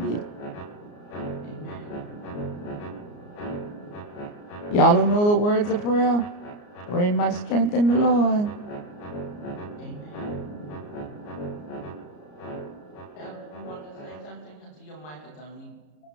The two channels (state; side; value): late; right; 34 ms